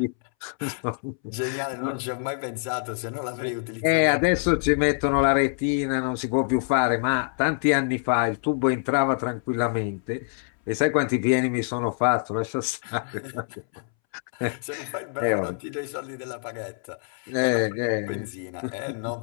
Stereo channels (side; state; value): right; silent; 61 dB below the other